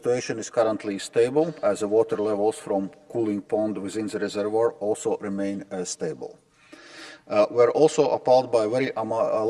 is currently stable as the water levels from cooling pond within the reservoir also remain stable. We are also appalled by very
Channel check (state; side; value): identical; both; correlation 1.00